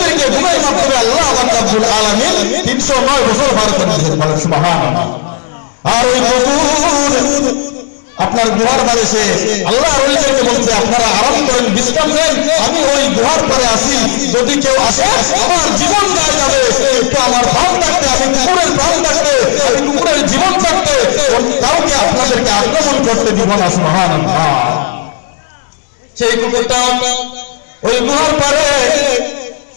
ঘুমের মাধ্যমে আল্লাহ রাব্বুল আলামিন 309 বছর পার করে দিয়েছেন, বলেন সুবহানাল্লাহ। আর ওই নূর আপনার গুহার পারে সে আল্লাহ ওলিদেরকে বলছে আপনারা আরাম করেন, বিশ্রাম নেন, আমি ওই গুহার পারে আসি, যদি কেউ আসে আমার জীবন দেওয়া যাবে, কিন্তু আমার প্রাণ থাকতে, আমি কুকুরের প্রাণ থাকতে, আমি কুকুরের জীবন থাকতে কাউকে আপনাদেরকে আক্রমণ করতে দিব না। সুবহানাল্লাহ। সেই কুকুরটা ওই গুহার পারে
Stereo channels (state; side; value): silent; right; digital silence